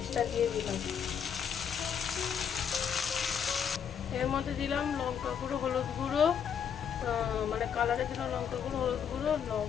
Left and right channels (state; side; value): quieter; right; 7.8 dB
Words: দিয়ে দিলাম। এর মধ্যে দিলাম লঙ্কা গুঁড়ো, হলুদ গুঁড়ো, মানে কালারের জন্য লঙ্কা গুঁড়ো, হলুদ গুঁড়ো,